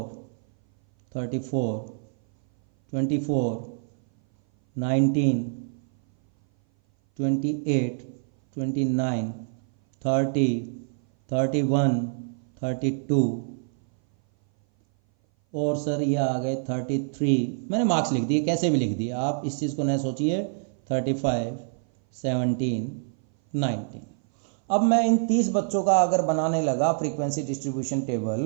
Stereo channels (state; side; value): silent; left; 58 dB below the other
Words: 34, 24, 19, 28, 29, 30, 31, 32 और सर ये आ गए 33। मैंने मार्क्स लिख दिए, कैसे भी लिख दिए, आप इस चीज़ को न सोचिए। 35, 17, 19। अब मैं इन 30 बच्चों का अगर बनाने लगा फ्रीक्वेंसी डिस्ट्रीब्यूशन